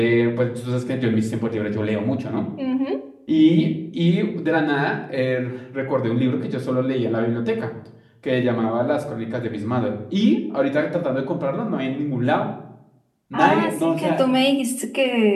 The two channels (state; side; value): identical; both; correlation 1.00